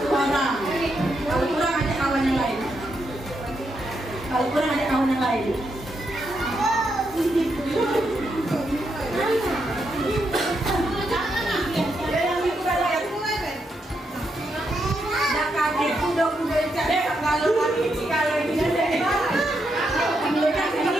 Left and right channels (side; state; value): both; normal; correlation 0.81